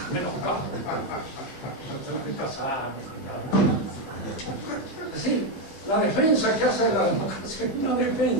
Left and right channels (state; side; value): late; right; 15 ms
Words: menos caro. No tengo que casarme ni nada. Es decir, la defensa que hace de la democracia es una